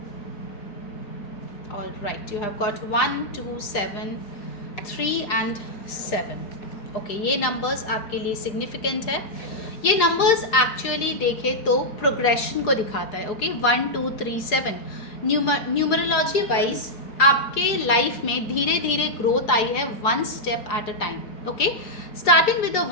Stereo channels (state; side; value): late; right; 4.8 ms